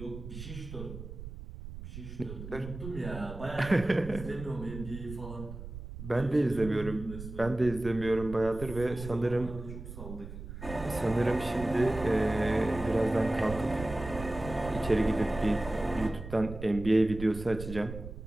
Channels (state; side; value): noise; right; rumble, 11 dB below the sound